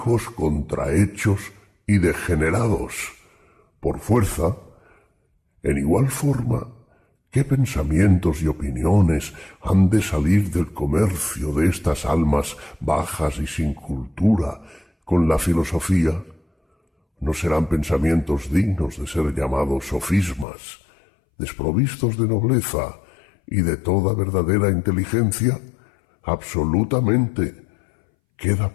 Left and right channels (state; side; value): drops out; right; at 20.5 s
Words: contrahechos y degenerados. Por fuerza, en igual forma, ¿qué pensamientos y opiniones han de salir del comercio de estas almas bajas y sin cultura con la filosofía? ¿No serán pensamientos dignos de ser llamados sofismas, desprovistos de nobleza y de toda verdadera inteligencia? Absolutamente. Queda